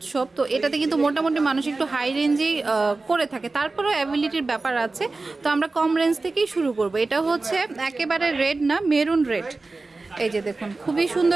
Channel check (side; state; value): left; quieter; 3.5 dB